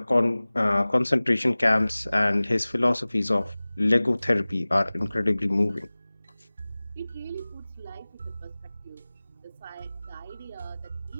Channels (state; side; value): inverted; both; correlation -0.99